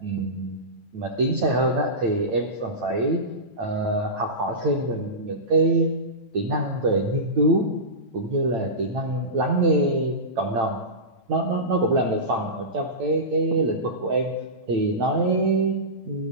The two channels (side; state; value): left; late; 9.0 ms